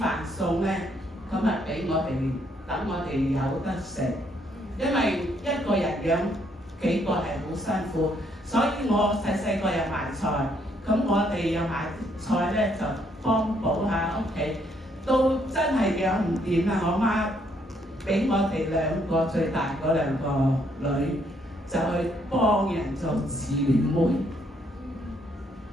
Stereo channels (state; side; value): normal; both; correlation 0.71